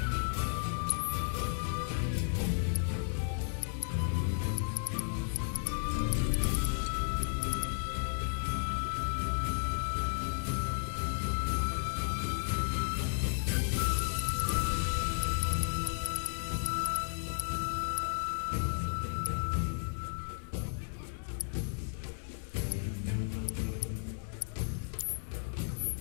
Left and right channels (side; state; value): right; silent; digital silence